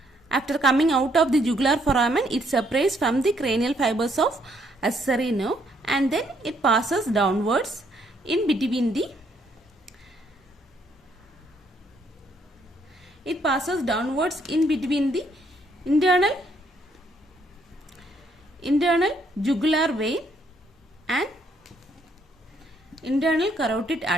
After coming out of the jugular foramen, it separates from the cranial fibers of accessory nerve, and then it passes downwards in between the internal jugular vein and internal carotid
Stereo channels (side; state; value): both; normal; correlation 0.70